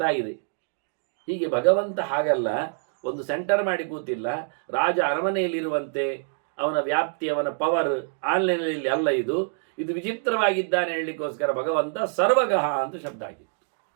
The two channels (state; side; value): silent; left; digital silence